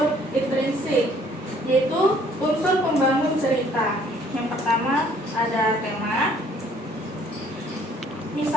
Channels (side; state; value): both; normal; correlation 0.60